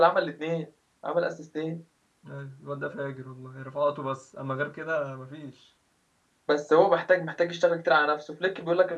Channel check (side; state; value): both; identical; correlation 1.00